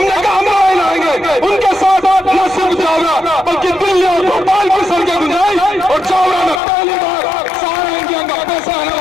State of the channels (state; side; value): drops out; right; at 6.6 s